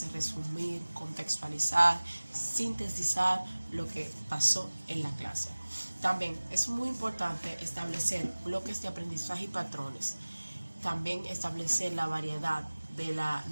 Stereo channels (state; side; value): inverted; both; correlation -1.00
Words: resumir, contextualizar, sintetizar lo que pasó en la clase. También es muy importante establecer bloques de aprendizaje y patrones. También establecer la variedad de la